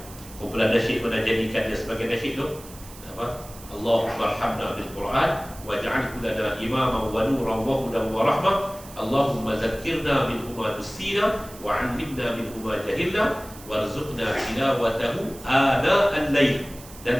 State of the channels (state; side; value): noise; right; hiss, 18 dB below the sound